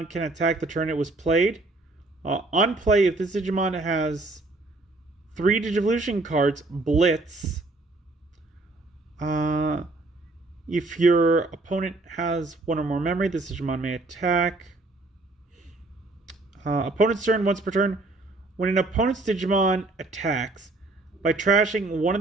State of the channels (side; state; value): left; quieter; 3.1 dB